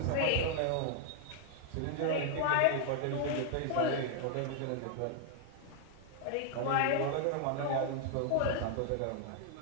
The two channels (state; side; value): different; both; correlation 0.00